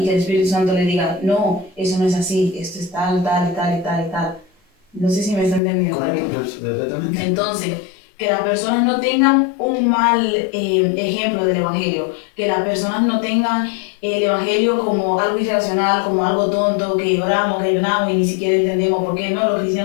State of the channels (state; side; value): drops out; right; at 5.6 s